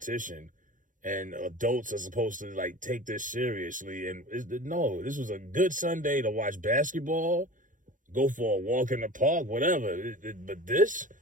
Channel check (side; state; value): left; late; 0.38 ms